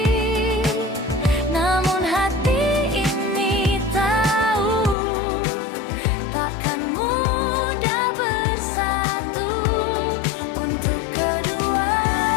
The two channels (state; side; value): drops out; right; at 5.0 s